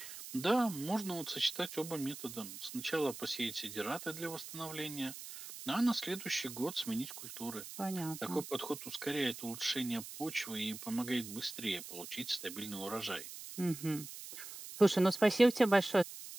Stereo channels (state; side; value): noise; right; hiss, 11 dB below the sound